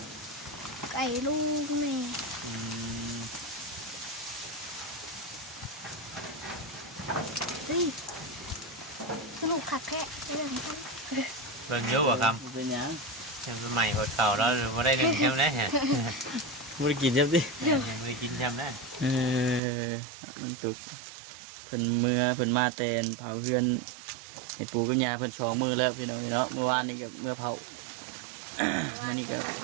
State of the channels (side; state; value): left; drops out; at 19.6 s